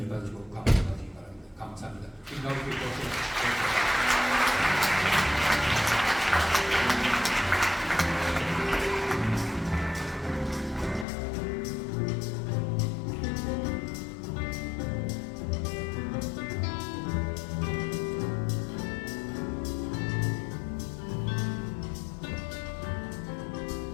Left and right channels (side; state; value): right; drops out; at 11.1 s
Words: 받으시고 감사하시기 바랍니다. 감사합니다.